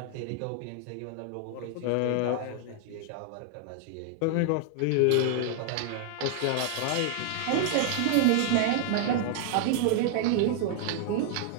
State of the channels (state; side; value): different; both; correlation 0.00